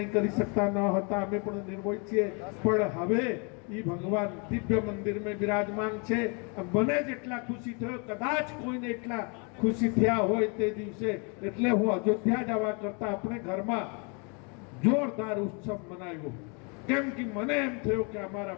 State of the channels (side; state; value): right; quieter; 34.3 dB